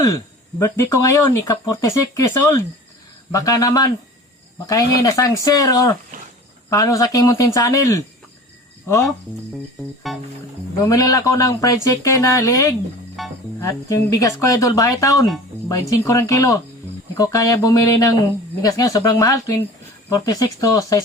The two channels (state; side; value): normal; both; correlation 0.40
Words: birthday ko ngayon, ika-46 years old. Baka naman, makahingi na sang share or paano sa aking muntin channel. Oh, bumili ako ng fried chicken na liig. At yung bigas ko idol, bahay taon, 25 ring kilo. Hindi ko kaya bumili ng bigas ngayon, sobrang mahal, 46 to